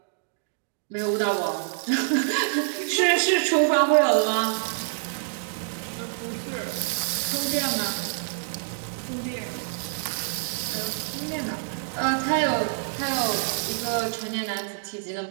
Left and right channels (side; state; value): left; silent; digital silence